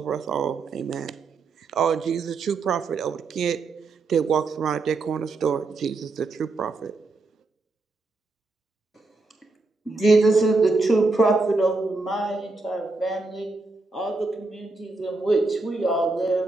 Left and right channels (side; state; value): left; quieter; 3.5 dB